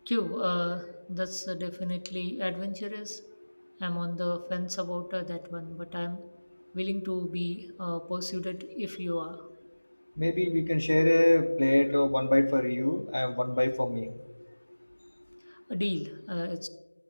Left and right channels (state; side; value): inverted; both; correlation -1.00